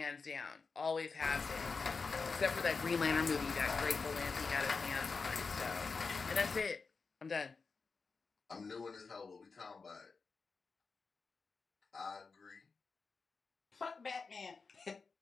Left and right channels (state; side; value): quieter; right; 4.6 dB